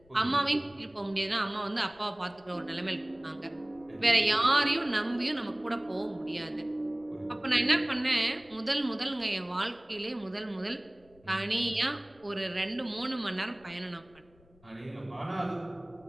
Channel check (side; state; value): left; noise; rumble, 29 dB below the sound